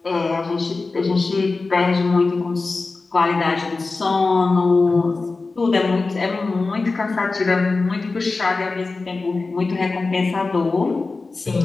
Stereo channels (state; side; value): quieter; right; 3.8 dB